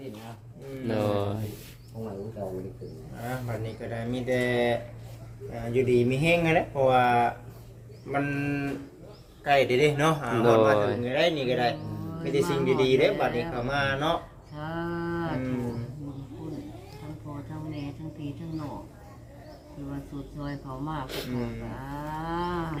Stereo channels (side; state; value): both; identical; correlation 1.00